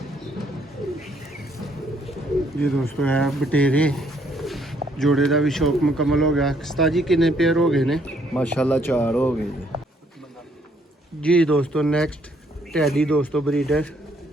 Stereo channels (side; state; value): both; normal; correlation 0.68